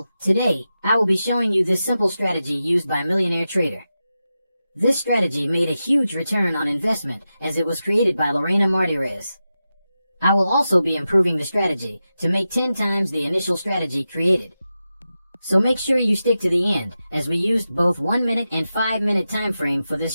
today, I will be showing you this simple strategy used by a millionaire trader. This strategy made a huge return on investment as it was created by Lorena Martinez. I will also be improving the strategy to make 10 times the initial strategy created. So make sure you stick to the end, as we used both 1 minute and 5 minute time frame for this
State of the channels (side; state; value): both; inverted; correlation -0.92